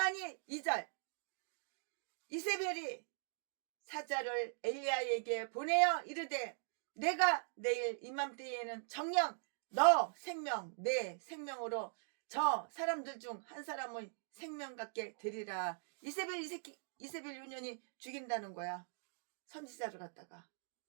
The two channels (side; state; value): left; silent; digital silence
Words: 2절 이세벨이 사자를 엘리야에게 보내어 이르되 내가 내일 이맘때에는 정녕 너 생명 내 생명으로 저 사람들 중 한 사람의 생명 같게 되리라. 이세벨 유년이 죽인다는 거야. 선지자를 갖다가